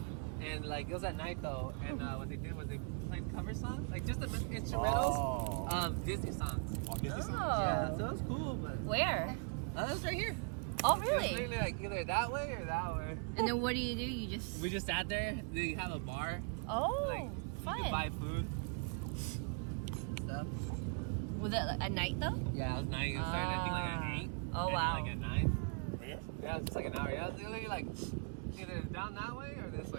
and like it was at night though. And what they did was they played cover songs, like just the instrumentals of Disney songs. Oh, Disney songs? Yeah, so it was cool. But Where? it was right here. Oh, It's really? literally like either that way or that way. And then what do? You just... We just sat there. They have a bar. Oh, Like, fun. You could buy food. Stuff. Was it at night though? Yeah, it was nice. It started, I think, like at 8. Oh, Ended, wow. Like at 9. Right here? Yeah, it was just like an hour. Yeah, it was literally like either down that way or this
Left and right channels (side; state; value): left; quieter; 39.8 dB